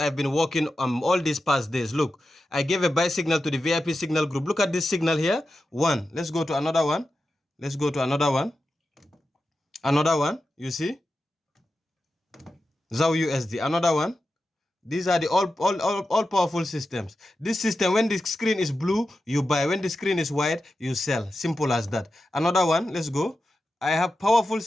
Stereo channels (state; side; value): normal; both; correlation 0.91